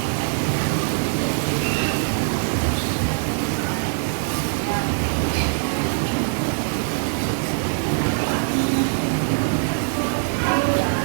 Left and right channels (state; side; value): silent; left; digital silence